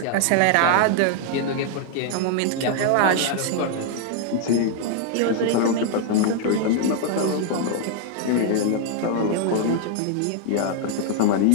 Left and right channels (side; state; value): both; different; correlation 0.00